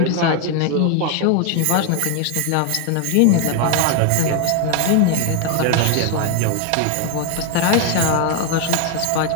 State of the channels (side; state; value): both; different; correlation 0.00